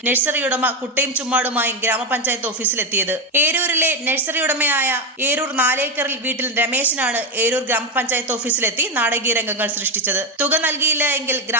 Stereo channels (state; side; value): normal; both; correlation 0.09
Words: നഴ്സറി ഉടമ കുട്ടയും ചുമ്മാടുമായും ഗ്രാമപഞ്ചായത്ത് ഓഫീസിലെത്തിയത്. ഏരൂരിലെ നഴ്സറി ഉടമയായ ഏരൂർ 4 ഏക്കറിൽ വീട്ടിൽ രമേശനാണ് ഏരൂർ ഗ്രാമപഞ്ചായത്ത് ഓഫീസിലെത്തി നാടകീയ രംഗങ്ങൾ സൃഷ്ടിച്ചത്. തുക നൽകിയില്ല എങ്കിൽ